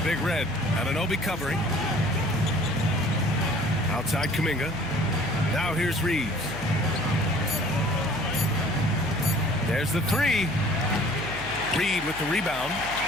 Big Red. Anunoby covering. Outside Kuminga. Now here's Reeves. There's the 3. Reed with the rebound.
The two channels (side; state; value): left; noise; hum, 15 dB below the sound